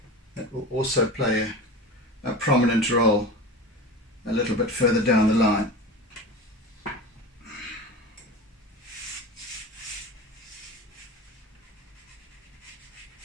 That will also play a prominent role a little bit further down the line.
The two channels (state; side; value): normal; both; correlation 0.30